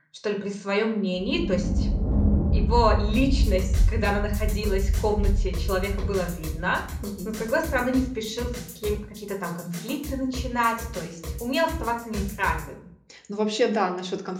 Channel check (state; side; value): identical; both; correlation 1.00